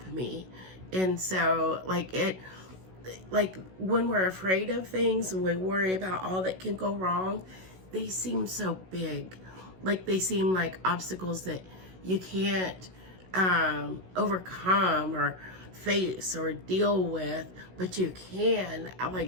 me. And so when we're afraid of things and we worry about all that can go wrong, they seem so big. They seem like obstacles that you can't overcome or face or deal with, but you can.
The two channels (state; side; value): late; left; 16 ms